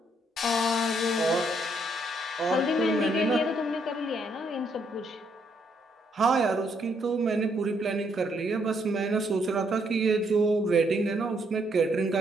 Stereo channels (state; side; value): normal; both; correlation 0.72